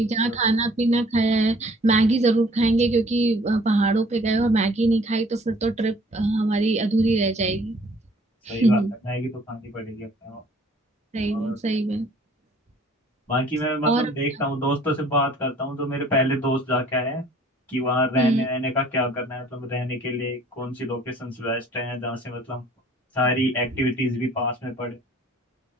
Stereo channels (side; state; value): both; normal; correlation 0.55